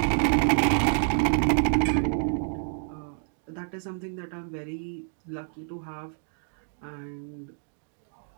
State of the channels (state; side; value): silent; left; digital silence